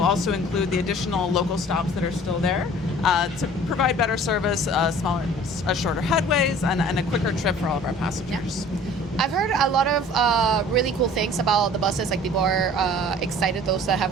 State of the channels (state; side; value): normal; both; correlation 0.48